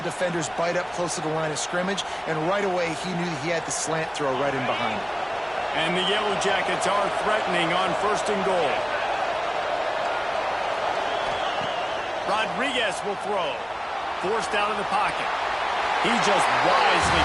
defenders bite up close to the line of scrimmage, and right away he knew he had the slant throw right in behind him. And the Yellow Jackets are threatening on 1st and goal. Rodriguez will throw. Forced out of the pocket. He just wisely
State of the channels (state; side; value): identical; both; correlation 1.00